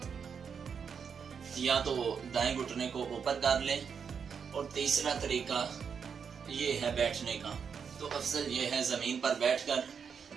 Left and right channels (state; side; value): quieter; left; 6.6 dB